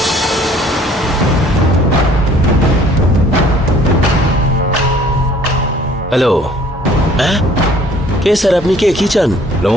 হ্যালো। হ্যাঁ, কে স্যার? আপনি কে? কি চান?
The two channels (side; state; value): both; normal; correlation 0.56